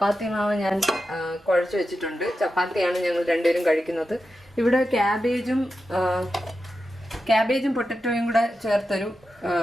മാവ് ഞാൻ കുഴച്ച് വെച്ചിട്ടുണ്ട്. ചപ്പാത്തിയാണ് ഞങ്ങൾ രണ്ടുപേരും കഴിക്കുന്നത്. ഇവിടെ ക്യാബേജും പൊട്ടറ്റോയും കൂടെ ചേർത്തൊരു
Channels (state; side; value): normal; both; correlation 0.90